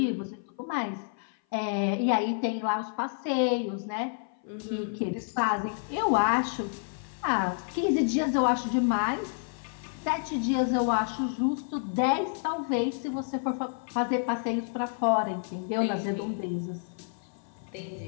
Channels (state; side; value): silent; right; 56 dB below the other